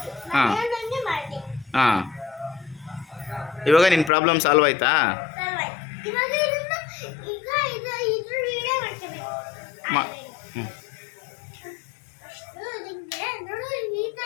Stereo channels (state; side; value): drops out; right; at 4.1 s